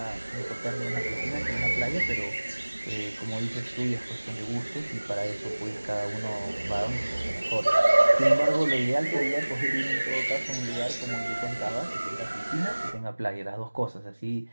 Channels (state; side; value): inverted; both; correlation -1.00